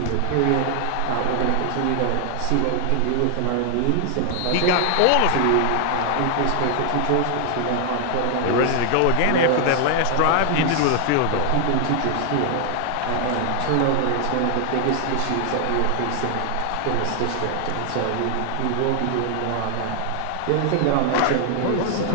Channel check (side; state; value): both; different; correlation 0.00